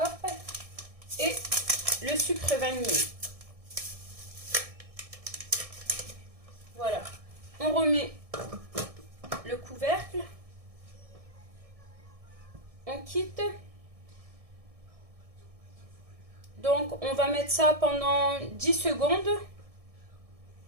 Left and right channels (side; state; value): left; late; 1.6 ms